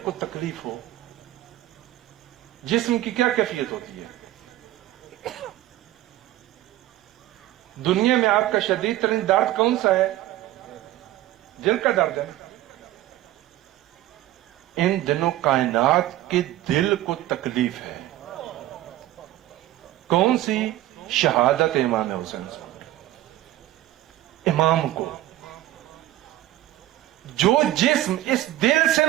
تکلیف ہو، جسم کی کیا کیفیت ہوتی ہے؟ دنیا میں آپ کا شدید ترین درد کون سا ہے؟ دل کا درد ہے۔ ان دنوں کائنات کے دل کو تکلیف ہے۔ کون سی؟ شہادت امام حسین صاحب، امام کو۔ جو جسم اس دل سے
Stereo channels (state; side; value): quieter; left; 14.8 dB